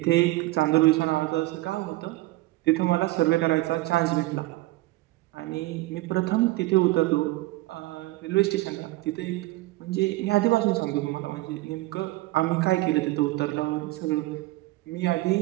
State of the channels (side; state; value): left; quieter; 19.1 dB